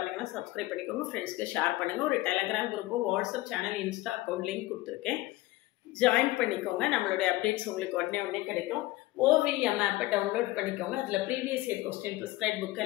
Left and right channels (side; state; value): right; quieter; 18.6 dB